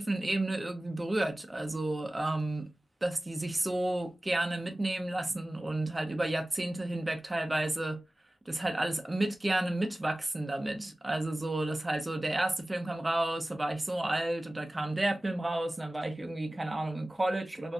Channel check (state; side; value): normal; both; correlation 0.97